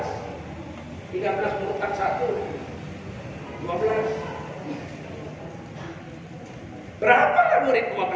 13 murtad 1. 12. Berapa lah murid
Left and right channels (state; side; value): identical; both; correlation 1.00